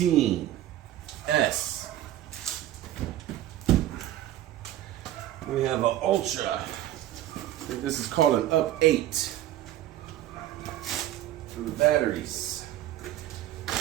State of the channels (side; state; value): left; quieter; 13.3 dB